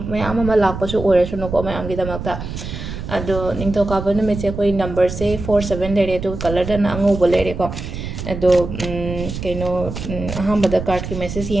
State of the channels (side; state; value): right; noise; rumble, 7 dB below the sound